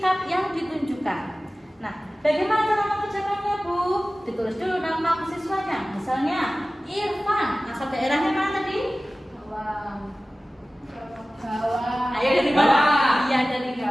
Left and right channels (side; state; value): both; normal; correlation 0.97